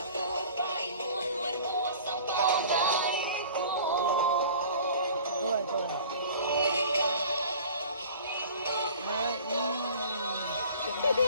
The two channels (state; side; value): inverted; both; correlation -0.45